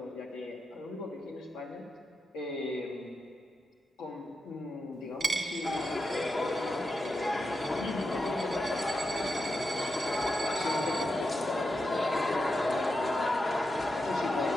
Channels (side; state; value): both; normal; correlation 0.88